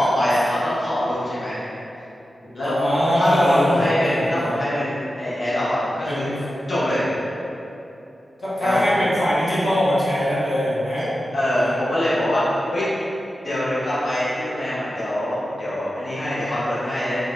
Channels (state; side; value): normal; both; correlation 0.92